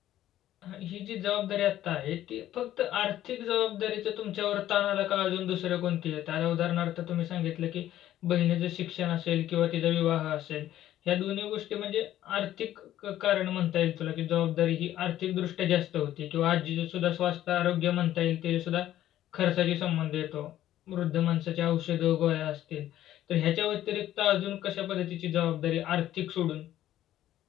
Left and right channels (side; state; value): right; quieter; 12.9 dB